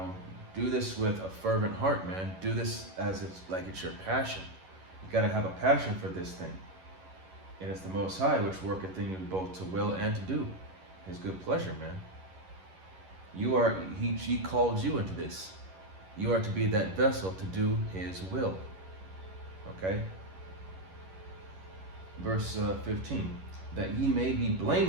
Do this with a fervent heart, man. Do this as it's your passion. You got to have a passion for this thing. And it's the Most High which worketh in you both to will and to do his good pleasure, man. He called you into this. You are to be that vessel to do his will. Okay? Verse 15, "That ye may be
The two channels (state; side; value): late; left; 11 ms